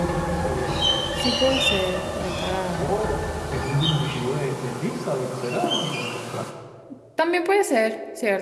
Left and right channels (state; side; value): identical; both; correlation 1.00